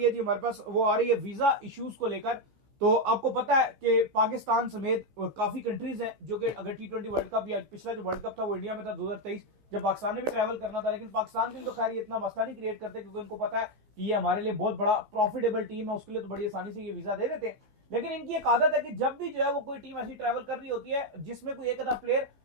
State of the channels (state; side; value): late; left; 15 ms